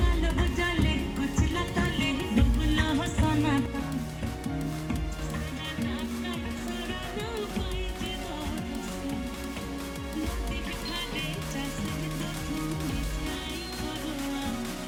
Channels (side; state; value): both; identical; correlation 1.00